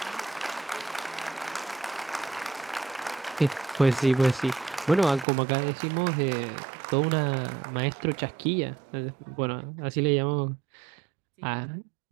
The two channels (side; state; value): left; drops out; at 5.2 s